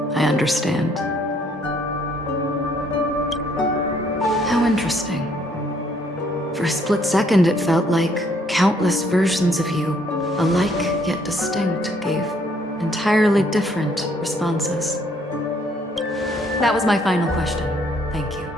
I understand. How interesting. For a split second, it felt like countless versions of you, alike yet distinct, gave entirely different responses. That was my final question. Thank you.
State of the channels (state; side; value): normal; both; correlation 0.66